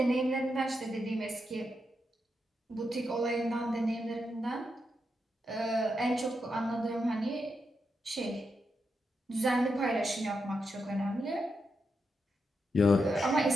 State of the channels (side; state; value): both; normal; correlation 0.85